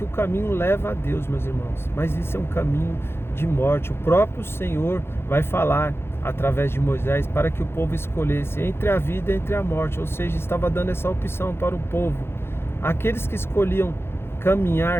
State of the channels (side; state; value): right; late; 0.12 ms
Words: o caminho leva a Deus, meus irmãos, mas isso é um caminho de morte. O próprio Senhor vai falar através de Moisés para que o povo escolhesse entre a vida e entre a morte, ou seja, estava dando essa opção para o povo. Aqueles que escolhiam